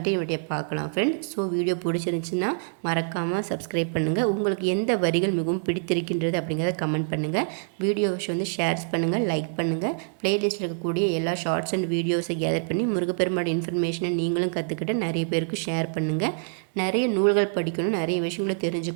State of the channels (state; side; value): silent; left; digital silence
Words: பார்க்கலாம் ஃப்ரெண்ட்ஸ். ஸோ வீடியோ பிடிச்சிருந்துச்சுன்னா மறக்காமல் சப்ஸ்கிரைப் பண்ணுங்கள். உங்களுக்கு எந்த வரிகள் மிகவும் பிடித்திருக்கின்றது அப்படிங்கிறத கமெண்ட் பண்ணுங்கள். வீடியோஸ் வந்து ஷேர்ஸ் பண்ணுங்கள், லைக் பண்ணுங்கள். ப்ளேலிஸ்ட்டில் இருக்கக்கூடிய எல்லா ஷார்ட்ஸ் அண்ட் வீடியோஸை கேதர் பண்ணி முருகப்பெருமானோட இன்ஃபர்மேஷனை நீங்களும் கற்றுக்கிட்டு நிறைய பேருக்கு ஷேர் பண்ணுங்கள். நிறைய நூல்கள் படிக்கணும், நிறைய விஷயங்களை